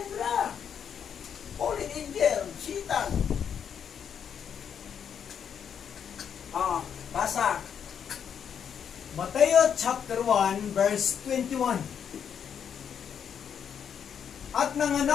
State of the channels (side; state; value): right; quieter; 7.9 dB